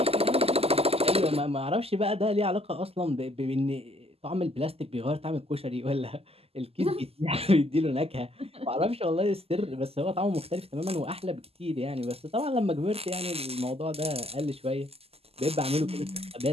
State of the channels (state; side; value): late; left; 0.29 ms